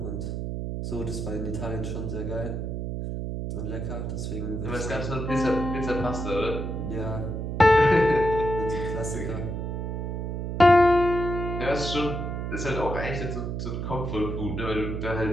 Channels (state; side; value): noise; right; hum, 3 dB below the sound